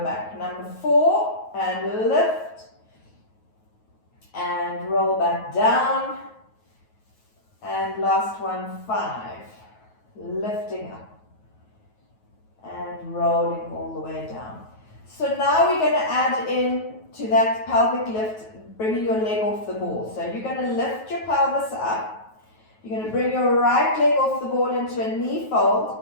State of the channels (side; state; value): right; late; 9.3 ms